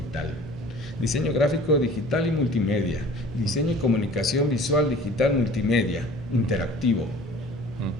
diseño gráfico digital y multimedia, diseño y comunicación visual digital multimedia, interactivo.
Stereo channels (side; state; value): both; normal; correlation 0.47